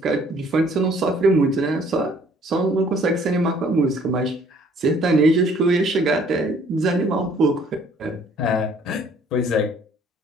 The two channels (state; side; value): normal; both; correlation 0.59